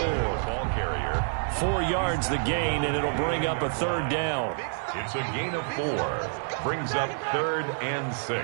carrier. 4 yards the gain, and it'll bring up a 3rd down. It's a gain of 4. Brings up 3rd and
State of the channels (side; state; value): left; silent; digital silence